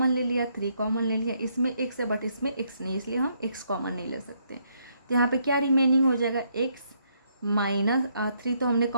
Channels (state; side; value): inverted; both; correlation -0.73